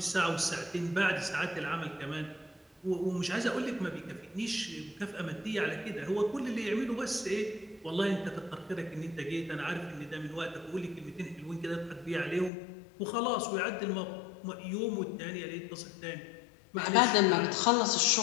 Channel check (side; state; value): right; drops out; at 12.5 s